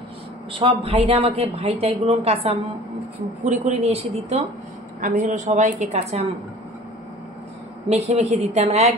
সব ভাইরা আমাকে ভাইটাইগুলো কাঁচা কুড়ে নিয়ে এসে দিত। আমি সবাইকে কাঁচা মেখে মেখে দিতাম,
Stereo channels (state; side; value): normal; both; correlation 0.45